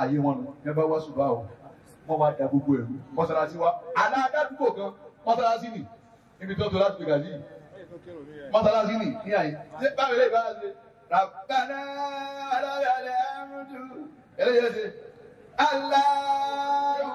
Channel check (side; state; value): both; identical; correlation 1.00